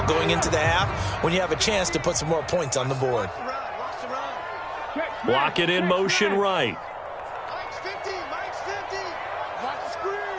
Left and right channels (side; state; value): both; identical; correlation 1.00